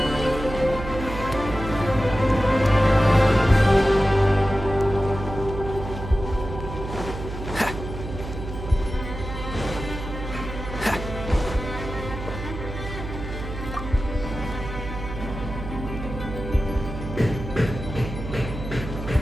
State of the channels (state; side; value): noise; right; hum, 8 dB below the sound